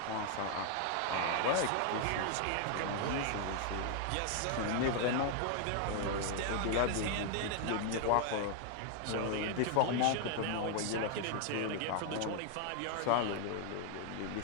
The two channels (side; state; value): both; different; correlation 0.00